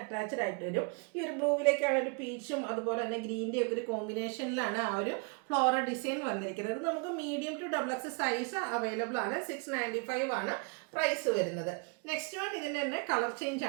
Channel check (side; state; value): left; quieter; 35.1 dB